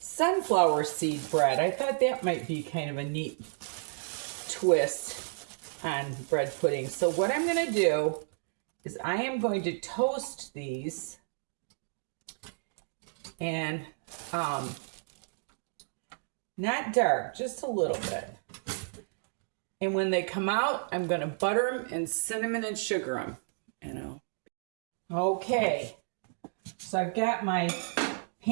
seed bread. I thought that might be kind of a neat twist on bread pudding. So what I'm going to do is I am going to toast these and not dark, just a little bit. And when they come out, I'm going to butter them and cinnamon and sugar them, Okay, so I've got my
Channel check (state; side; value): silent; left; digital silence